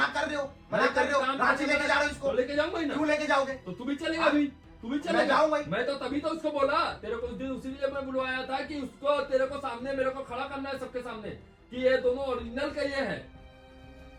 कर रहे हो, मना कर रहे हो। काम रांची करने लेके जा रहे हो तो इसको। लेके जाऊंगा ही ना। क्यों लेके जाओगे? तो तू भी चलेगा अभी, तू भी चलेगा। जाऊंगा ही। मैं तो तभी तो उसको बोला तेरे को उस दिन, उसीलिए मैं बुलवाया था कि उसको तेरे को सामने मेरे को खड़ा करना है सबके सामने कि ये दोनों ओरिजिनल का ये है।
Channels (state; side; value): identical; both; correlation 1.00